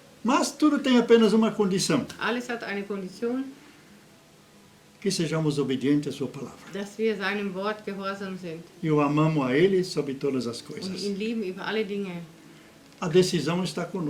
Mas tudo tem apenas uma condição, Alles hat eine Kondition, que sejamos obedientes à sua palavra. dass wir seinem Wort gehorsam sind E o amamos a Ele sobre todas as und coisas. ihn lieben über alle Dinge. A decisão está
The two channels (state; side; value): identical; both; correlation 1.00